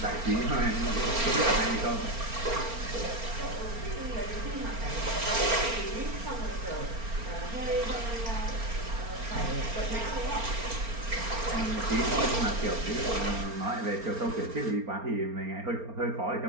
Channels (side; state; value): left; late; 4.4 ms